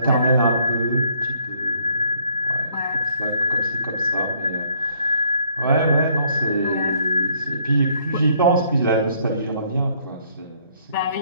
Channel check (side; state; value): both; inverted; correlation -0.64